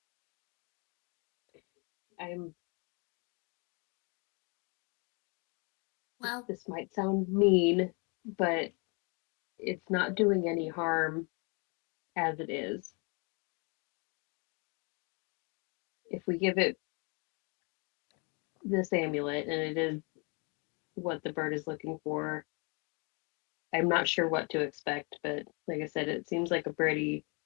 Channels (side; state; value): right; quieter; 33.3 dB